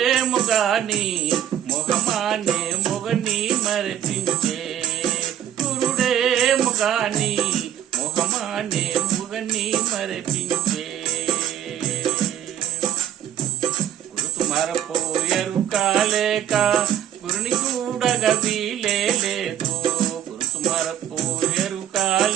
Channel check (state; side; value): quieter; left; 11.2 dB